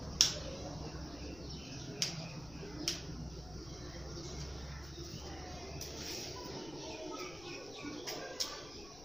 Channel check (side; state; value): left; noise; rumble, 14 dB below the sound